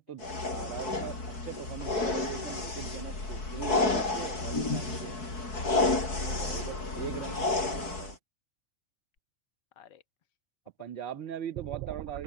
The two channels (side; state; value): right; late; 4.6 ms